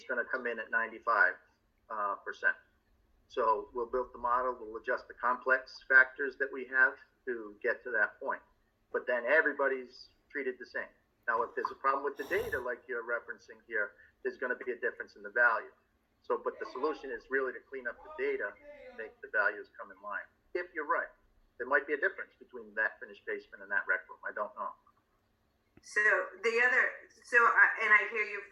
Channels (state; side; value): identical; both; correlation 1.00